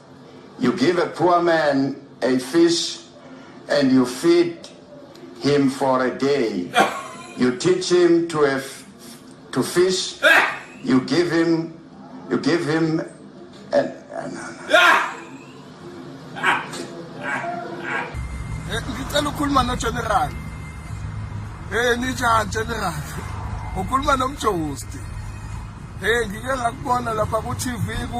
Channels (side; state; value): both; identical; correlation 1.00